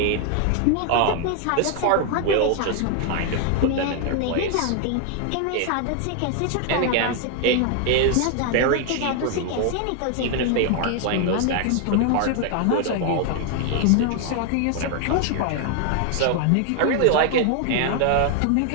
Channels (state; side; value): different; both; correlation 0.00